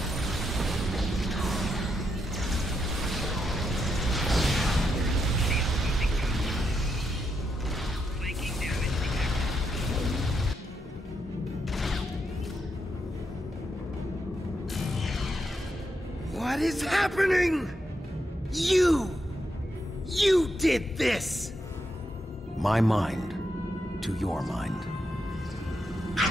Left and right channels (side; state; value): both; normal; correlation 0.82